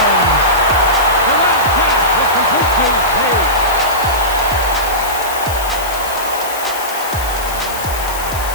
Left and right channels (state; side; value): noise; left; hiss, 10 dB below the sound